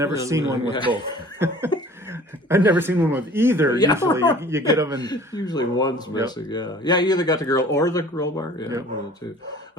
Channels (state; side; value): normal; both; correlation 0.47